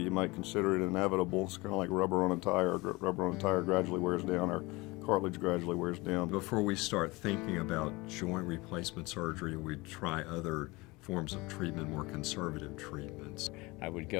might consider it inevitable. It's kind of like rubber on a tire. Rubber on a tire gradually wears down, our cartilage gradually wears down. Before we start thinking about joint replacement surgery, we'd try other forms of treatment, more conservative treatments. I would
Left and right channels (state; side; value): quieter; right; 23.3 dB